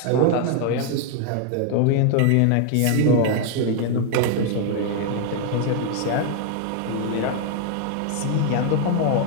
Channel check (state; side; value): different; both; correlation 0.00